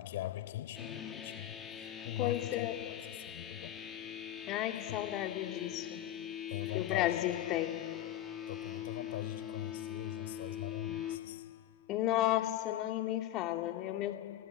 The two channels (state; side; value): quieter; right; 12.8 dB